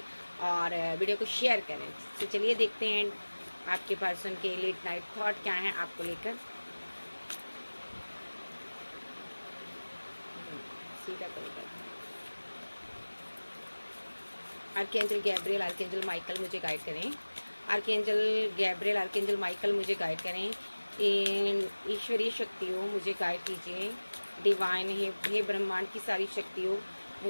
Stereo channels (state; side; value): inverted; both; correlation -1.00